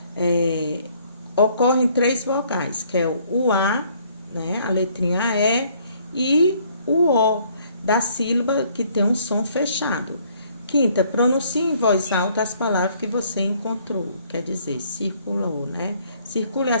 ocorrem 3 vogais, que é o A, né, a letrinha E, e o O, da sílaba que tem um som fechado. Quinta, pronuncie em voz alta as palavras que você encontrou, quer dizer, circulou, né? Circule a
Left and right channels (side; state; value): both; inverted; correlation -0.63